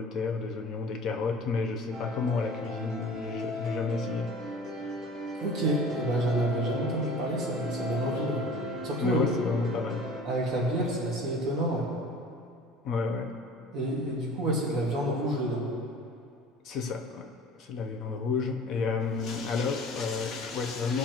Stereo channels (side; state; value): both; normal; correlation 0.43